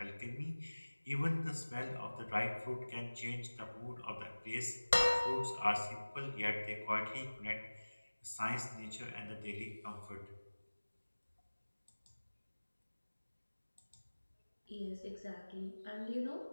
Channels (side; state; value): both; inverted; correlation -1.00